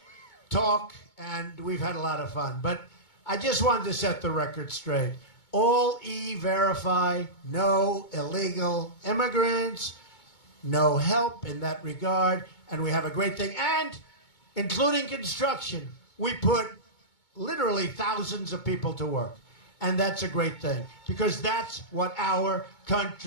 talk, and we've had a lot of fun. But I just wanted to set the record straight. All E-Verify, no illegal immigrants, no help in that regard, and we have a great thing. And including construction, we put literally thousands of people to work. And that's a great thing, because that's what our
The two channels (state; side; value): late; right; 2.2 ms